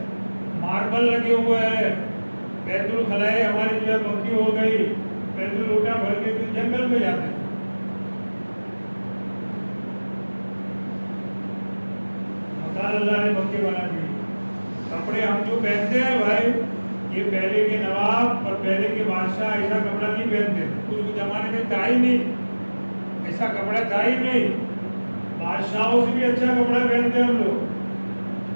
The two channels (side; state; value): both; inverted; correlation -1.00